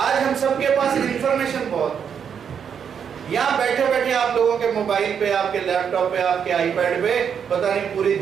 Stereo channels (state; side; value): quieter; left; 7.5 dB